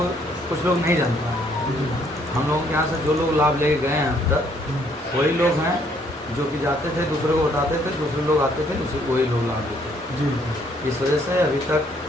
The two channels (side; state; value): both; normal; correlation 0.66